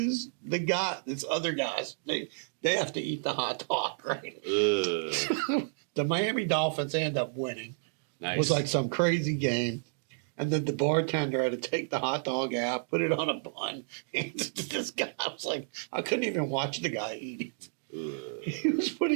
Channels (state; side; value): silent; left; digital silence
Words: this other guys, they have to eat the hot dog, right? The Miami Dolphins end up winning. Nice. It was like some crazy game. And then the bartender had to take the hot dog out, put it on a bun. And this guy, I was like, I couldn't even watch the guy eat it. He was